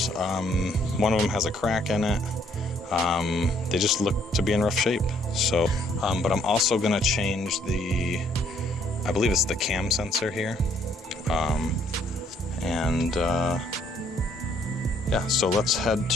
one of them has a crack in it. They just look to be in rough shape. So, but I'm also going to change I believe it's the cam sensor here. Yeah, so let's head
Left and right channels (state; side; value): normal; both; correlation 0.66